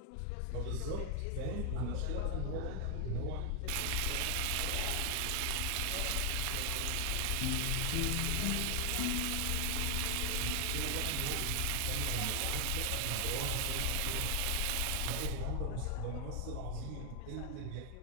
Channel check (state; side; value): different; both; correlation 0.00